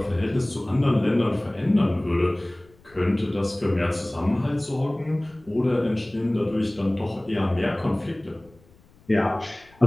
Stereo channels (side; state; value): left; noise; rumble, 28 dB below the sound